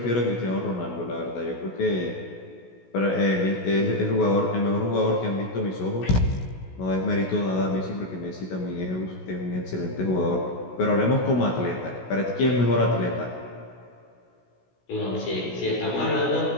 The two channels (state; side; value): late; right; 16 ms